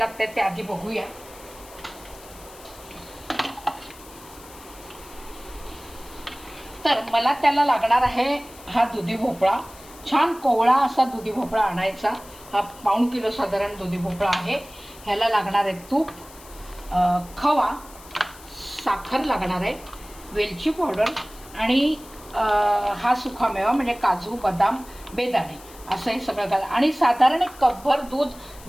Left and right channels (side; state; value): left; noise; hiss, 20 dB below the sound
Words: ते आधी बघूया. तर मला त्याला लागणार आहे हा दुधी भोपळा. छान कोवळा असा दुधी भोपळा आणायचा. हा पाऊण किलो साधारण दुधी भोपळा आहे. ह्याला लागणार आहे तूप, खवा, साखर लागणार आहे, वेलची पावडर आणि हा सुकामेवा म्हणजे काजू, बदाम, बेदाणे असं हे सगळं घाल. आणि साधारण एक कपभर दूध